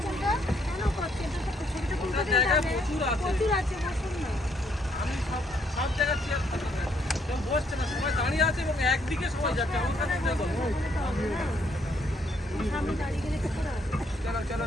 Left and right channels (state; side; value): normal; both; correlation 0.70